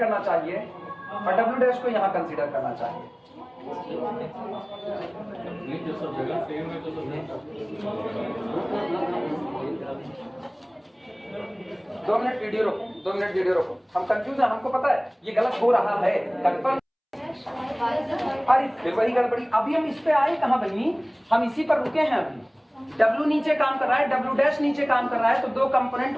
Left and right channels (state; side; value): identical; both; correlation 1.00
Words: चाहिए और W डैश को यहाँ कंसीडर करना चाहिए। नहीं तो सब जगह सेम है, तो सब 2 मिनट वीडियो रोको, 2 मिनट वीडियो रोको। हम कंफ्यूज है, हमको पता है ये गलत हो रहा है, कंफर्म। अरे फिर वही गड़बड़ी। अभी हम इस पे आए कहाँ बनी, हम इसी पर रुके हैं। अभी W नीचे काम कर रहा है, W डैश नीचे काम कर रहा है, तो दो कंपोनेंट